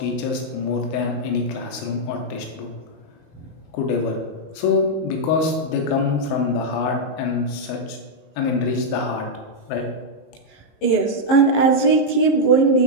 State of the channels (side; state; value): right; late; 20 ms